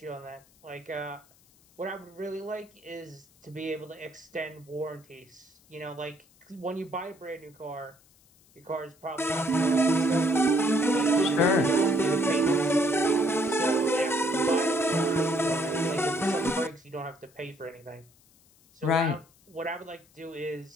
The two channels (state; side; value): noise; left; hiss, 30 dB below the sound